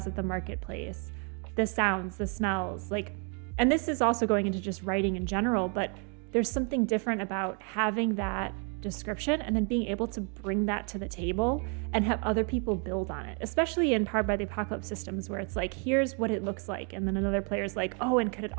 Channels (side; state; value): left; quieter; 38.1 dB